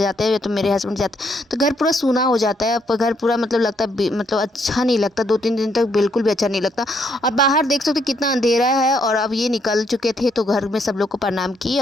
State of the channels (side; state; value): both; normal; correlation 0.72